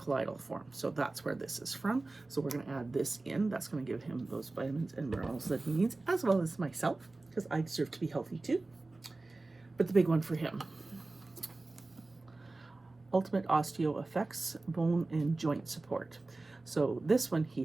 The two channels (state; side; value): quieter; left; 3.2 dB